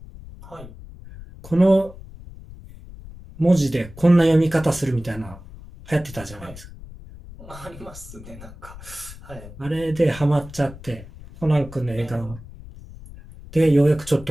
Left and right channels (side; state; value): left; noise; rumble, 17 dB below the sound